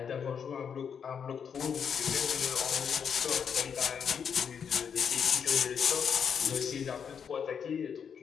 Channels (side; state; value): right; quieter; 7.2 dB